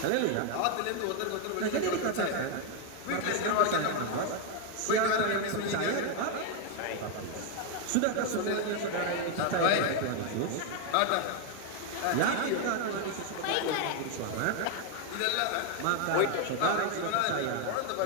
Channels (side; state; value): both; different; correlation 0.01